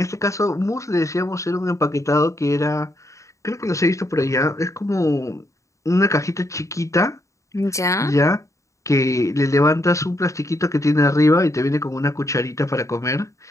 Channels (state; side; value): late; right; 0.15 ms